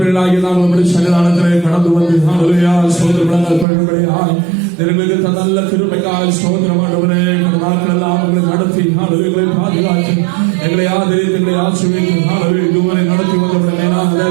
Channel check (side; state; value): left; drops out; at 3.7 s